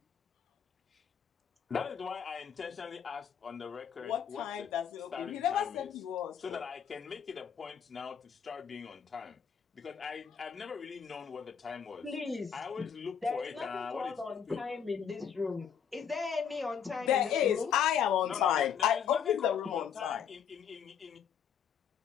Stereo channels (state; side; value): quieter; right; 7.9 dB